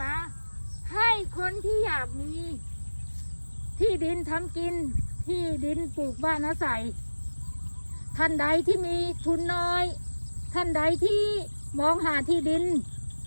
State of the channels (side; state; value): both; inverted; correlation -1.00